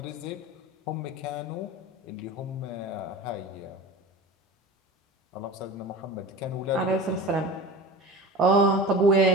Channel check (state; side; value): normal; both; correlation 0.33